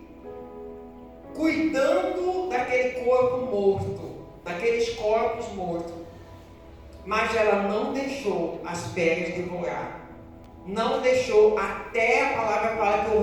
cuidando daquele corpo morto. Daqueles corpos mortos, mas ela não deixou as feras devorar, não deixou, até a palavra fala que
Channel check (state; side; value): identical; both; correlation 1.00